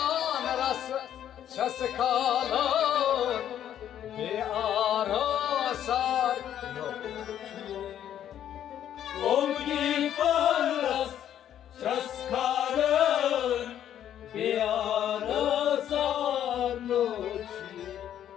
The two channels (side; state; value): right; quieter; 10.5 dB